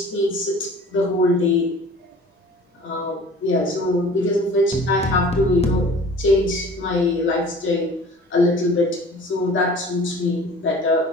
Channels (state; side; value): normal; both; correlation 0.45